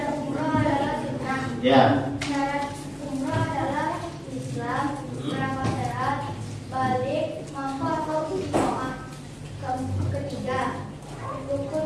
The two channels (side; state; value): both; identical; correlation 1.00